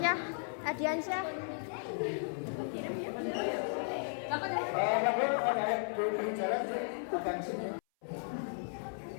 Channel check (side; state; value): right; silent; 54 dB below the other